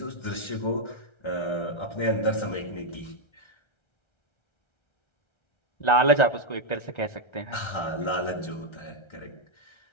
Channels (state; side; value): late; right; 1.3 ms